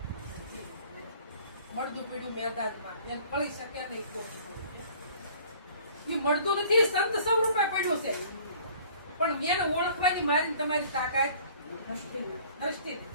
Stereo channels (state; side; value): inverted; both; correlation -0.53